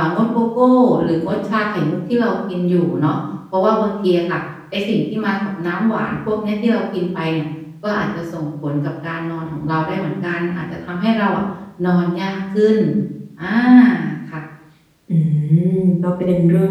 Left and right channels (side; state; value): both; identical; correlation 1.00